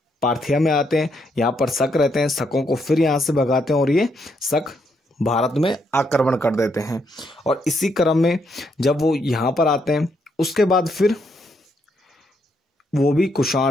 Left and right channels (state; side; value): normal; both; correlation 0.76